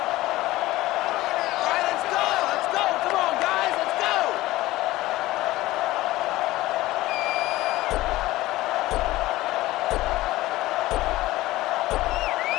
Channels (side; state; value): right; quieter; 17.4 dB